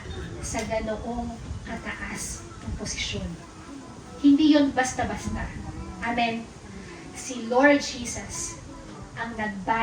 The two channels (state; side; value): identical; both; correlation 1.00